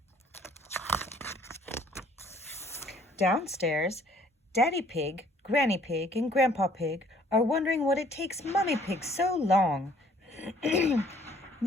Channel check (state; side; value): normal; both; correlation 0.59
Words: Downstairs, Daddy Pig, Granny Pig, and Grandpa Pig are wondering what it takes Mummy Pig so long.